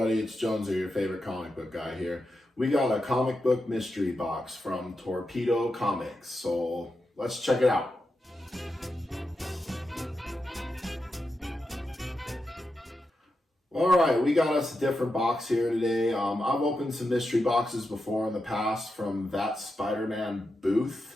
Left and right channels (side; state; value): both; normal; correlation 0.88